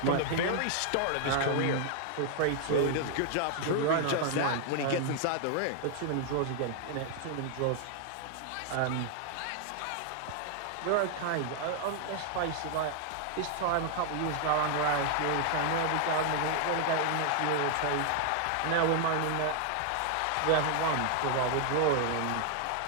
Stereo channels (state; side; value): different; both; correlation 0.00